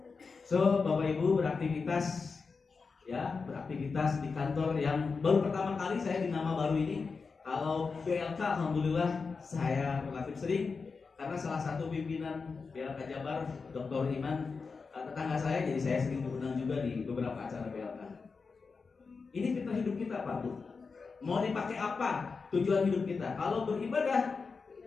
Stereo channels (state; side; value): quieter; right; 4.8 dB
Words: So, Bapak Ibu beraktivitas, ya, beraktivitas di kantor yang baru pertama kali saya di nama baru ini. Kalau BLK, alhamdulillah saya relatif sering, karena salah satu pimpinan BLK Jabar, Dr. Iman, tetangga saya, jadi saya sering diundang juga di beberapa acara BLK. Ini fitrah hidup kita, Pak Bu. Mau dipakai apa tujuan hidup kita? Kalau beribadah